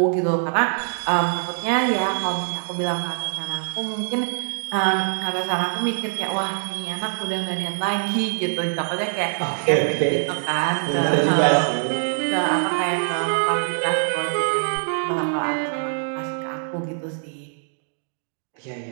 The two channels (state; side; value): silent; left; digital silence